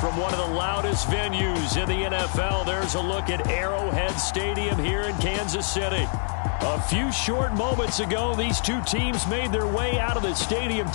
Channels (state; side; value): silent; right; 62 dB below the other